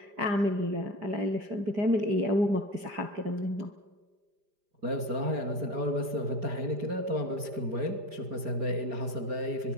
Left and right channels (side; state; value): left; late; 5.0 ms